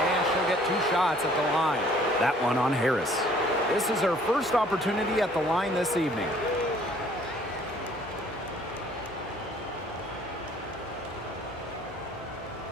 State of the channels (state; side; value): normal; both; correlation 0.57